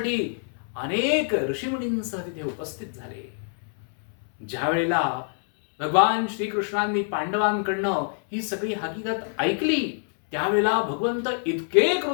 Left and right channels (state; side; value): silent; right; 61 dB below the other